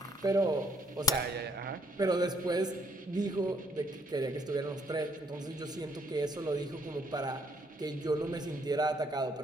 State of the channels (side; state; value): both; normal; correlation 0.68